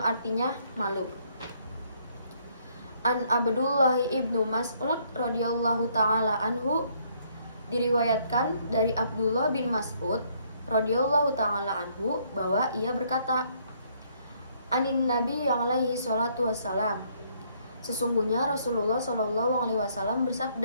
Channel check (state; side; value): inverted; both; correlation -0.67